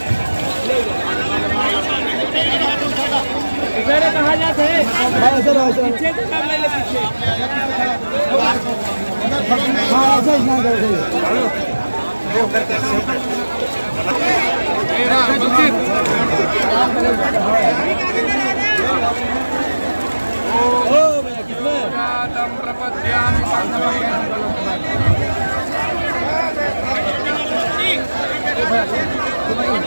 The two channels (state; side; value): inverted; both; correlation -1.00